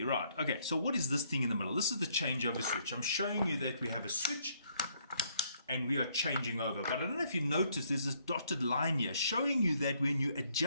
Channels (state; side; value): inverted; both; correlation -0.68